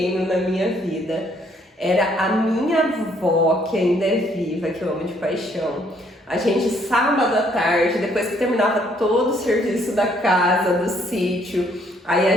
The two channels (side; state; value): both; normal; correlation 0.66